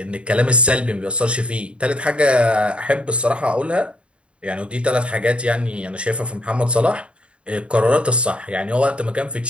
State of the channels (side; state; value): left; late; 0.058 ms